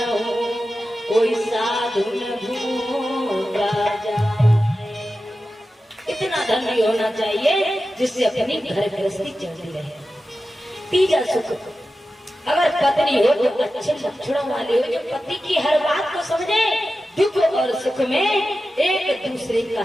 कोई साधु न भूखा जाए। इतना धन भी होना चाहिए जिससे अपनी घर गृहस्थी चलती रहे। तीजा सुख, अगर पत्नी हो तो अच्छे लक्षणों वाली हो, जो पति की हर बात को समझे, दुख और सुख में एक दूसरे का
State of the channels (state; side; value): normal; both; correlation 0.93